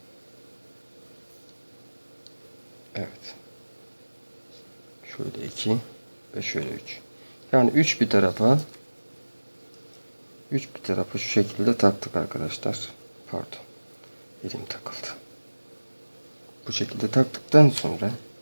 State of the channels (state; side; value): inverted; both; correlation -1.00